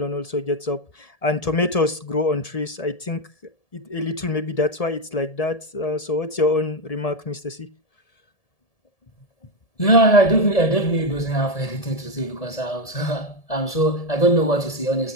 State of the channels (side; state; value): right; late; 1.7 ms